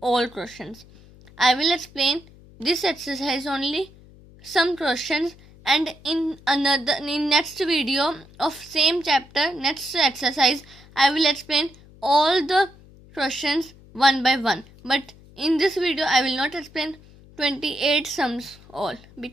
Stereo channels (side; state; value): left; noise; hum, 23 dB below the sound